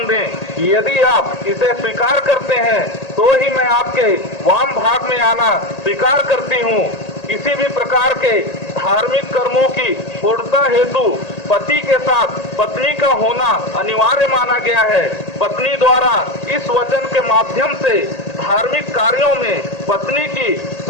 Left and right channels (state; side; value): late; right; 1.8 ms